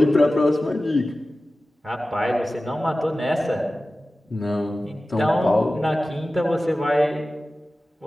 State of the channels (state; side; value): normal; both; correlation 0.96